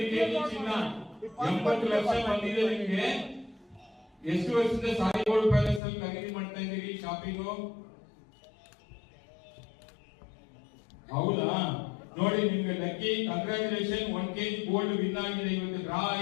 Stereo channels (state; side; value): drops out; right; at 5.8 s